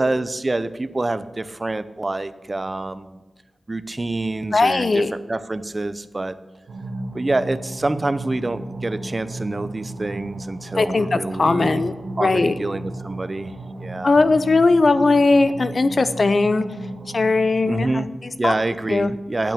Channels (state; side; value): normal; both; correlation 0.95